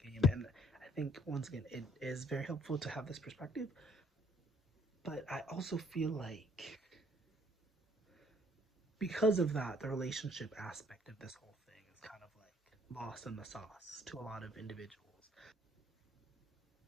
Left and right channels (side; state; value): both; normal; correlation 0.63